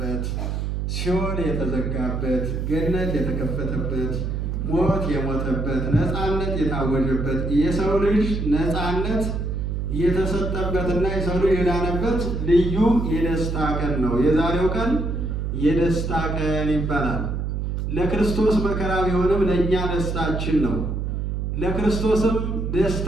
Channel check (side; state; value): right; noise; hum, 2 dB below the sound